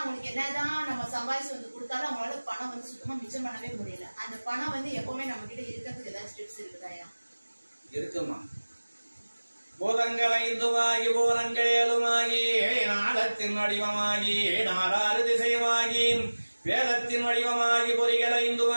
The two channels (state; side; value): inverted; both; correlation -1.00